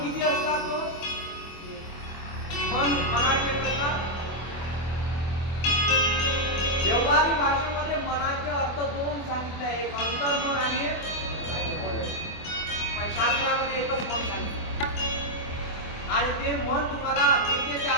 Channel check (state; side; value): late; right; 24 ms